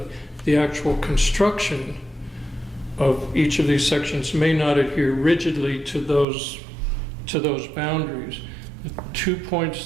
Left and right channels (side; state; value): left; drops out; at 6.2 s